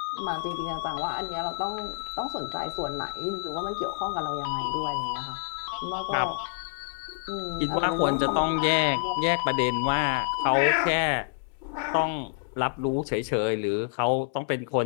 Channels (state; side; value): silent; right; digital silence